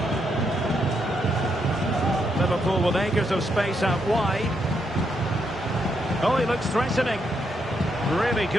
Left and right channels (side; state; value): both; normal; correlation 0.79